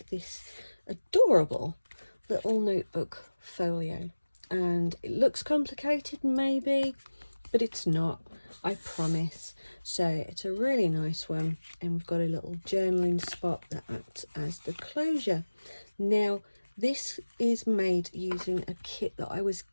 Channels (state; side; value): inverted; both; correlation -1.00